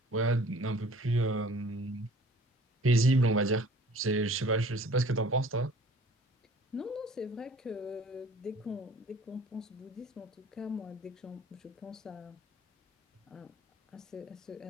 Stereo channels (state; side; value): normal; both; correlation 0.51